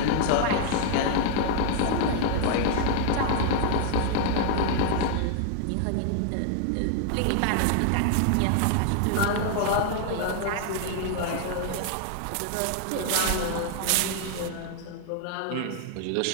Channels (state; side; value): different; both; correlation 0.00